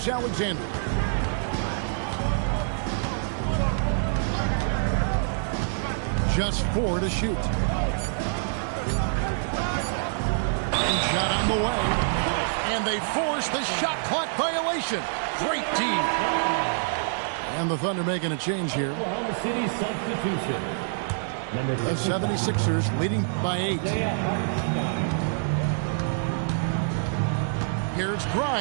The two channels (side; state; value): left; silent; digital silence